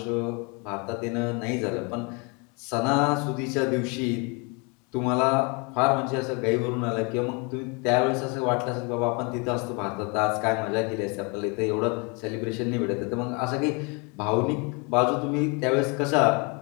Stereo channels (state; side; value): quieter; right; 31.9 dB